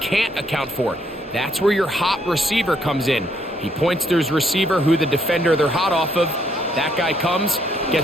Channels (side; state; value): both; normal; correlation 0.71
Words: account for. That's where your hot receiver comes in. He points to his receiver who the defender they're hot off of. That guy comes,